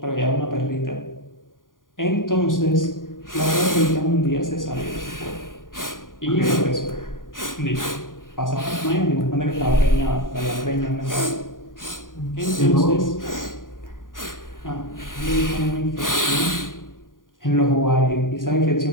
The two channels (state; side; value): late; right; 0.89 ms